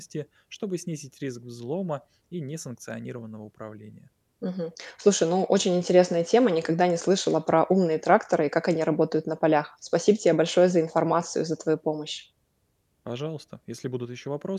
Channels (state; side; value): identical; both; correlation 1.00